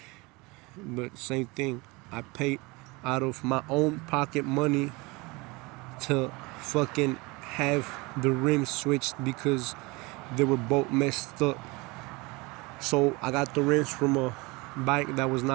But same thing, I paid out of my own pocket money to fucking have the rims switched because they were both messed up. So I got the rims from a bike that was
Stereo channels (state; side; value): quieter; left; 25.2 dB